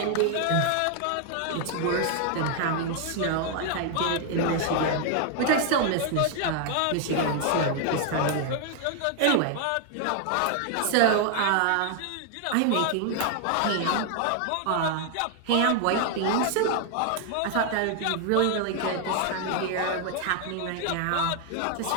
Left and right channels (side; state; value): both; different; correlation 0.00